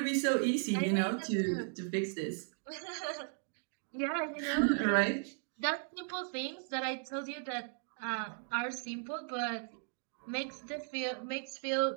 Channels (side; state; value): left; silent; 54 dB below the other